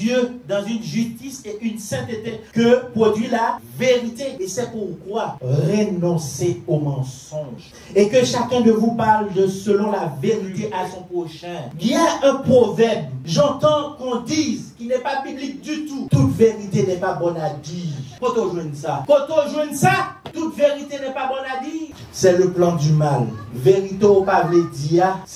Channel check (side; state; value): both; identical; correlation 1.00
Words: dans une justice et une sainteté que produit la vérité. Et c'est pourquoi renoncez au mensonge et que chacun de vous parle de selon la vérité à son prochain. Il y a un proverbe, j'entends qu'on dise, qui n'est pas biblique du tout. Toute vérité n'est pas bonne à dire. Quand on joue ça, toute vérité n'est pas bonne à dire. C'est le plan du mal. Vérité au pas dire,